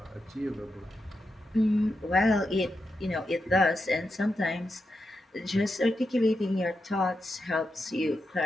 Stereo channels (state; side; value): normal; both; correlation 0.87